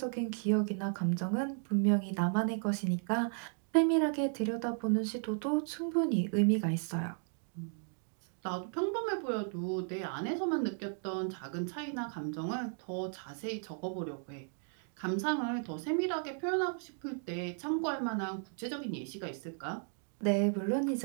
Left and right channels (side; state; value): left; silent; 55 dB below the other